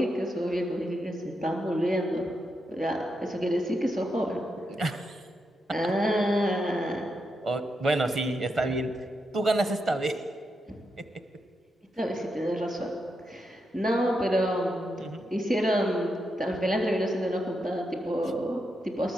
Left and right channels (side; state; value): both; normal; correlation 0.84